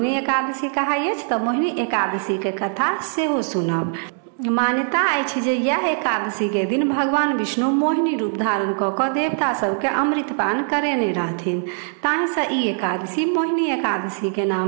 एकादशी कहाइ अछि, तो मोहिनी एकादशी के कथा सेहो सुनब। मान्यता अछि जे यह एकादशी के दिन भगवान विष्णु मोहिनी रूप धारण कऽ देवता सबके अमृत पान करेने रहथिन, ताहि से ई एकादशी मोहिनी एकादशी के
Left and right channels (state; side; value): silent; left; 63 dB below the other